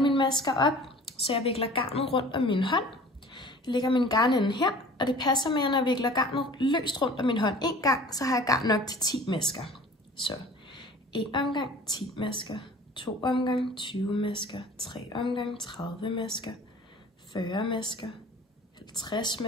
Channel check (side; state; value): both; normal; correlation 0.45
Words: mine masker op. Så jeg vikler garnet rundt om min hånd. Jeg lægger min garnende her, og det passer med, at når jeg vikler garnet løst rundt om min hånd en gang, så har jeg garn nok til 10 masker. Så 1 omgang 10 masker, 2 omgang 20 masker, 3 omgang 30 masker, 40 masker, 50